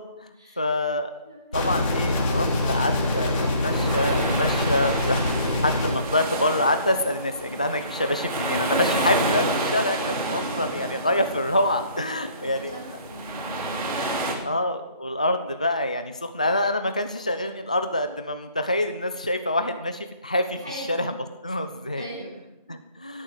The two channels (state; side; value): inverted; both; correlation -0.57